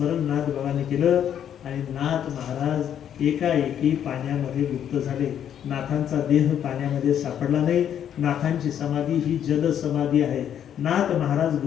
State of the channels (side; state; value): right; quieter; 9.5 dB